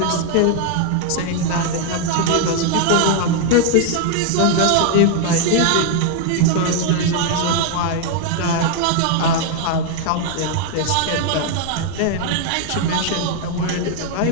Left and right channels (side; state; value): both; different; correlation 0.00